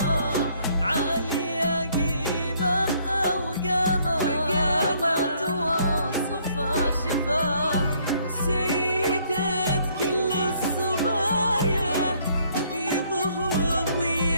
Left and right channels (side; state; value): both; inverted; correlation -0.65